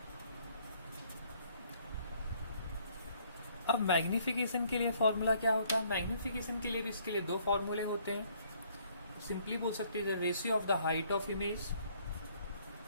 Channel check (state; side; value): inverted; both; correlation -0.64